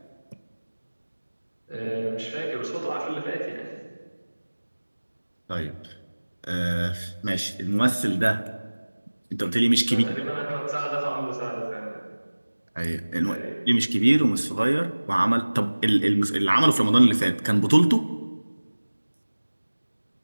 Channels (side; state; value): both; inverted; correlation -1.00